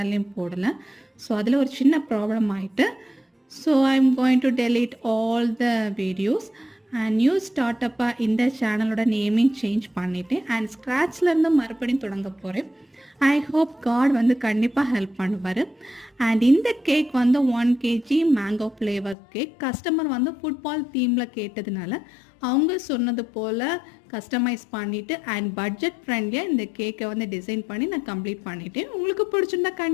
போடலை. ஸோ அதில் ஒரு சின்ன ப்ராப்ளம் ஆகிட்டு, so I am going to delete all the videos and new ஸ்டார்ட்டப்பாக இந்த சேனலோட நேமையும் சேஞ்ச் பண்ணிவிட்டேன் அண்ட் ஸ்க்ராட்ச்லேருந்து மறுபடியும் தொடங்க போகிறேன். ஐ ஹோப் காட் கண்டிப்பாக ஹெல்ப் பண்ணுவார். அண்ட் இந்த cake 1 kg mango flavour cake. Customer football தீமில் கேட்டதுனால அவங்க சொன்னது போல் கஸ்டமைஸ் பண்ணிவிட்டு அண்ட் பட்ஜெட் ஃப்ரெண்ட்லியாக இந்த கேக்கை டிசைன் பண்ணி நான் கம்ப்ளீட் பண்ணிவிட்டேன். உங்களுக்கு பிடிச்சிருந்தா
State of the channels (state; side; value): drops out; right; at 19.2 s